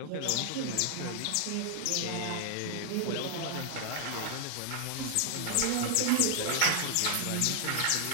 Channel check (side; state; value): both; different; correlation 0.00